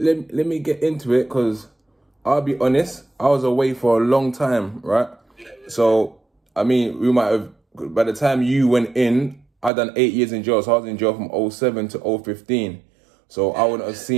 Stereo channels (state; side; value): drops out; left; at 9.7 s